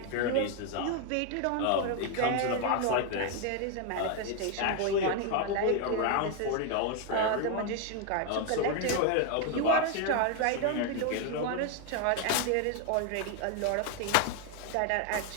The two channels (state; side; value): different; both; correlation 0.01